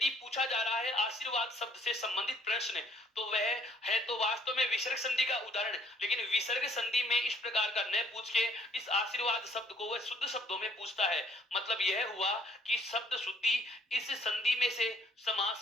पूछा जा रहा है आशीर्वाद शब्द से संबंधित प्रश्न, तो वह है तो वास्तव में विसर्ग संधि का उदाहरण। लेकिन विसर्ग संधि में इस प्रकार का न पूछ के इस आशीर्वाद शब्द को वह शुद्ध शब्दों में पूछता है। मतलब यह हुआ कि शब्द शुद्धि इस संधि में से, समास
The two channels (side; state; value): both; normal; correlation 0.63